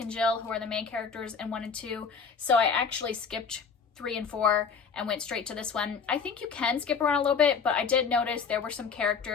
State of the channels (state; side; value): quieter; right; 5.8 dB